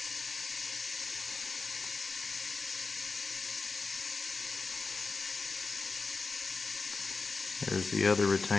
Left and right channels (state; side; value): quieter; right; 4.2 dB